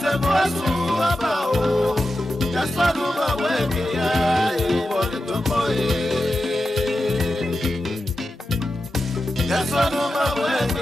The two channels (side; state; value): both; normal; correlation 0.91